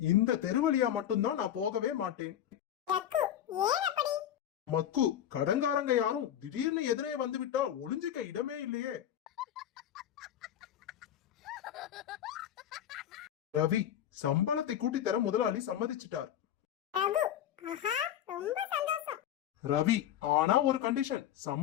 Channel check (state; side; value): quieter; right; 10.8 dB